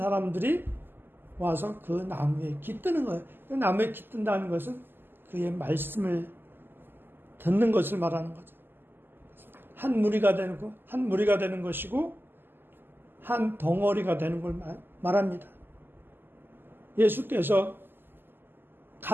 와서 그 나무에 깃드는 거예요. 그 나무에 깃든다는 것은 그의 말씀을 듣는 것을 말하는 거죠. 한 무리가 되는 것이고 한 덩어리가 되는 걸 말합니다. 예수께서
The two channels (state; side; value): late; left; 0.097 ms